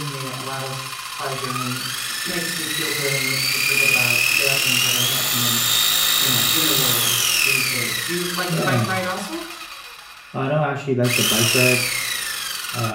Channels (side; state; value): both; identical; correlation 1.00